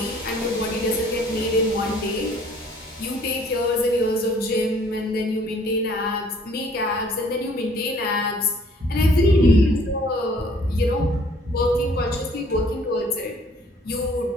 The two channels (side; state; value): both; normal; correlation 0.58